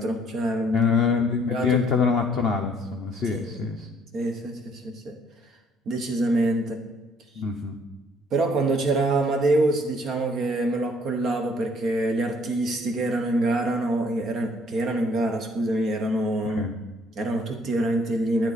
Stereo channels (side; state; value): both; normal; correlation 0.63